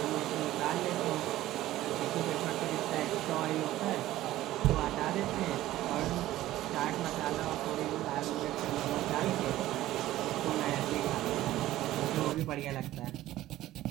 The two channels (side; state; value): left; quieter; 15.0 dB